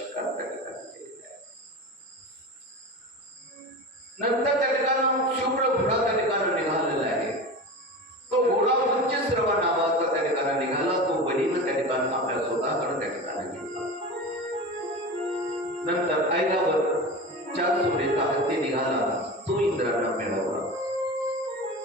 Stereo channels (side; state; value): both; normal; correlation 0.29